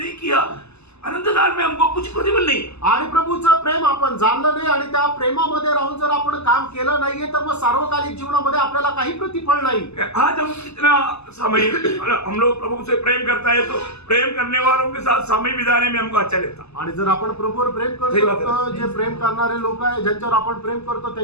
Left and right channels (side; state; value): right; late; 0.80 ms